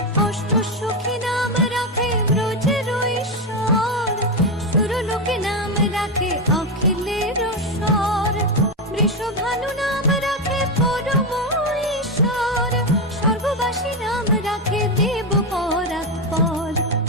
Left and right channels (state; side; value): normal; both; correlation 0.09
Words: অষ্ট সখী নাম রাখে ব্রজের ঈশ্বর, সুরলোকে নাম রাখে অখিলের স্বর, বৃষভানু নাম রাখে পরম ঈশ্বর, সর্ববাসী নাম রাখে দেব পরাৎপর,